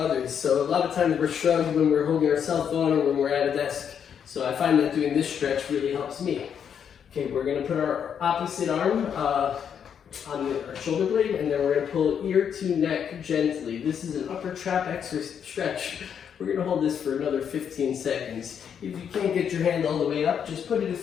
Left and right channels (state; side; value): quieter; right; 8.0 dB